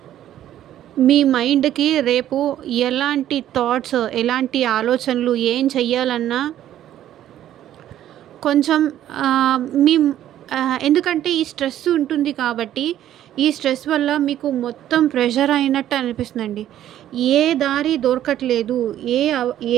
మీ మైండ్కి రేపు ఎలాంటి థాట్స్, ఎలాంటి ఆలోచనలు, ఏం చెయ్యాలన్నా కొంచెం మీ ఎందుకంటే ఈ స్ట్రెస్ ఉంటుంది కాబట్టి ఈ స్ట్రెస్ వల్ల మీకు మొత్తం ప్రెషర్ అయినట్టు అనిపిస్తుందండి. ఏ దారి దొరకట్లేదు. ఏ అవ్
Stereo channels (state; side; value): quieter; left; 11.9 dB